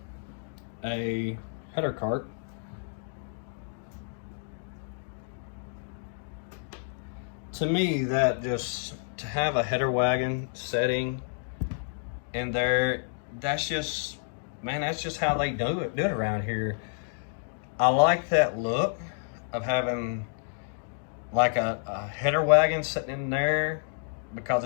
a header cart, to me, that just, to have a header wagon setting in there, that's just, man, that's just how they do it around here. I like that look of having like a header wagon sitting in there, because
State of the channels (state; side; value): silent; right; digital silence